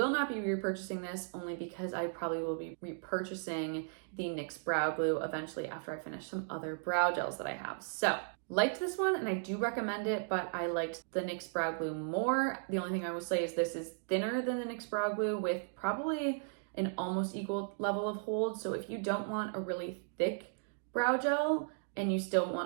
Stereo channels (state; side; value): silent; left; digital silence